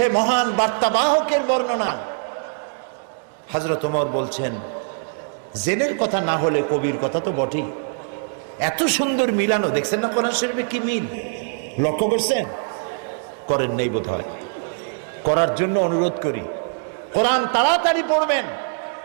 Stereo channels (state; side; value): silent; left; digital silence